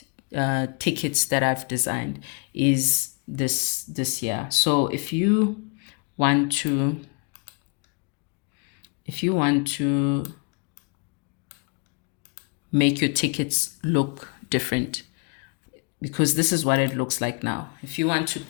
tickets that I've designed is this here. So if you want to make your tickets look different, because this is what it looks like now. If you want to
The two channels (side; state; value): right; quieter; 36.9 dB